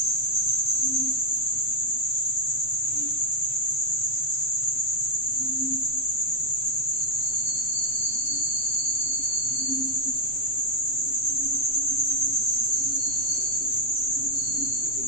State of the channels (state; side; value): late; right; 7.8 ms